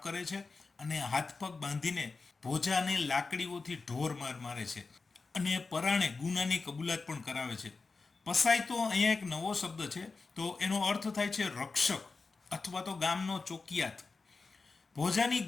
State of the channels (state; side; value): quieter; right; 4.2 dB